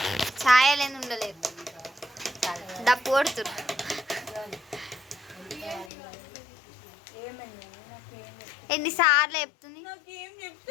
ఛాయలేని ఉండలేదు. డప్పు కొడుతురు. ఎన్నిసార్లు చెప్తుంది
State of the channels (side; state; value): right; drops out; at 5.9 s